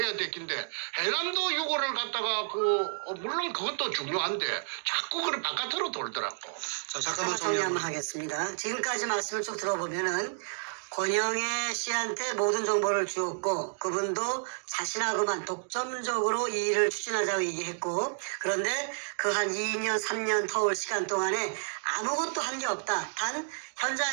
됐긴데 해남도 욕을 갖다가 물론 그것도 중요한데 자꾸 바깥으로 돌더라고. 잠깐만 정리 한번 하겠습니다. 지금까지 말씀을 쭉 들어보면은 권영애 씨한테 모든 정보를 주었고 그분도 자신하고만 독점적으로 이 일을 추진하자고 얘기했고 그런데 한 2년 3년 터울 시간 동안에 아무것도 한 게 없다. 단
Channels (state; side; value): silent; left; digital silence